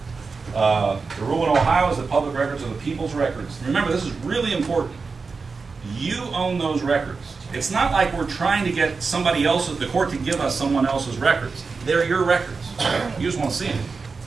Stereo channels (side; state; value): left; quieter; 4.6 dB